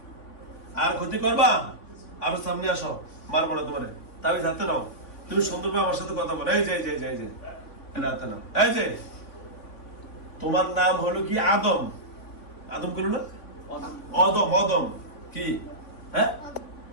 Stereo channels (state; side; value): late; right; 3.5 ms